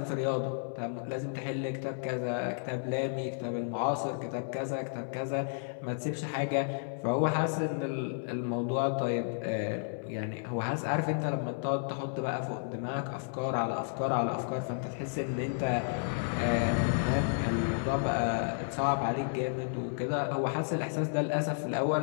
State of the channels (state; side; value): silent; right; 56 dB below the other